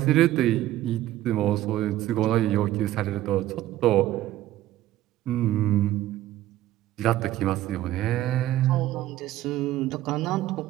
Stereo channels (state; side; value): quieter; left; 14.3 dB